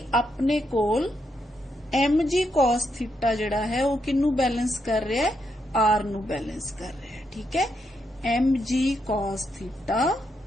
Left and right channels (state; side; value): normal; both; correlation 0.80